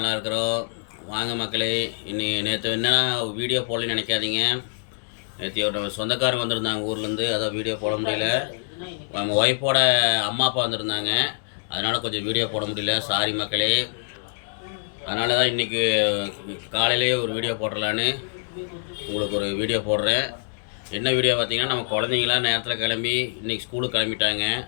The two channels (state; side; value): silent; right; digital silence